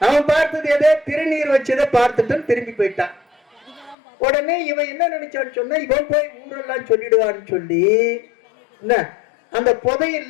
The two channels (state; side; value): drops out; right; at 4.0 s